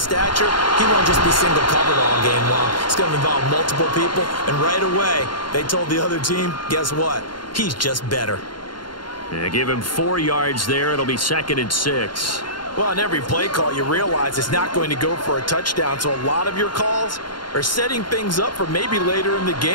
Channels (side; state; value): right; late; 0.72 ms